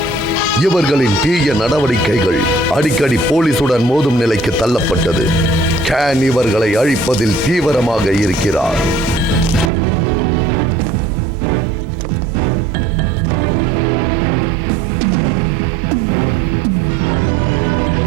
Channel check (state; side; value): drops out; left; at 9.7 s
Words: இவர்களின் தீய நடவடிக்கைகள் அடிக்கடி போலீசுடன் மோதும் நிலைக்கு தள்ளப்பட்டது. கேன் இவர்களை அழிப்பதில் தீவிரமாக இருக்கிறார்.